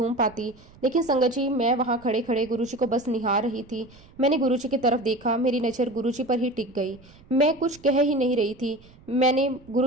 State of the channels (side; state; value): right; noise; rumble, 25 dB below the sound